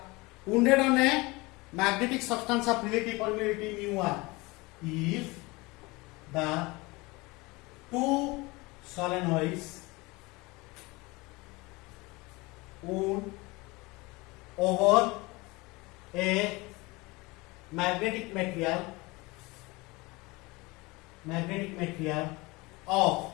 wounded on a magnetic substance of relative permeability mu1, if the two solenoids wound over a magnetic material of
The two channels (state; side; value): quieter; right; 23.8 dB